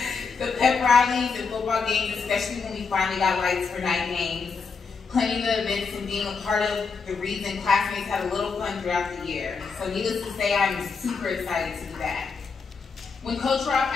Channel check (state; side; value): quieter; right; 5.1 dB